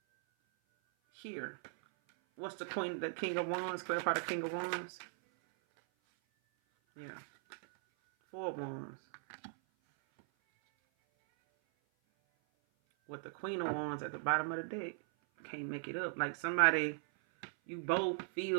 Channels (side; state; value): left; silent; 52 dB below the other